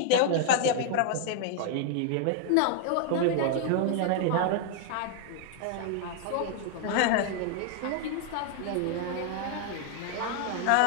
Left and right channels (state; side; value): different; both; correlation 0.00